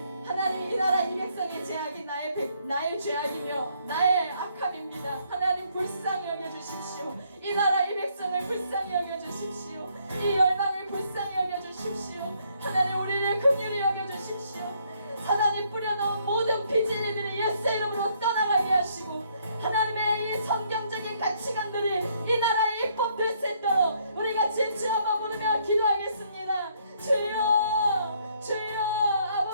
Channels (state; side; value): inverted; both; correlation -0.69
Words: 하나님 이 나라 이 백성의 죄악이 나의 죄악이며 나의 악함입니다. 하나님 불쌍히 여겨주십시오. 이 나라 이 백성을 불쌍히 여겨주십시오. 이 열방을 불쌍히 여겨주십시오. 하나님 우리를 긍휼히 여겨주십시오. 사단이 뿌려놓은 모든 비진리들이 예수 이름으로 떠나가게 하시고 하나님의 이 성경적인 가치관들이 이 나라의 입법될 수 있도록 우리 같이 주 한번 부르며 기도하겠습니다. 주여 주여